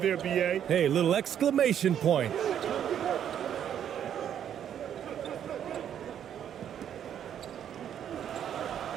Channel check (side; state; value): left; quieter; 9.5 dB